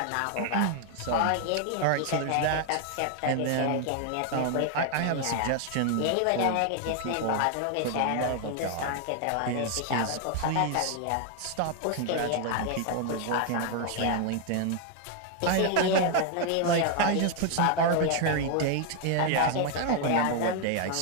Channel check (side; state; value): both; different; correlation 0.00